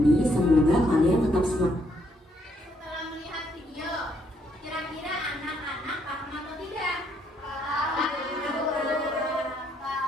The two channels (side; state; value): both; normal; correlation 0.72